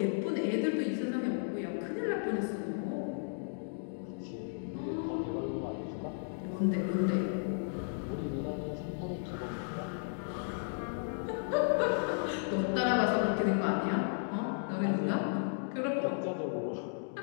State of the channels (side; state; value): right; silent; digital silence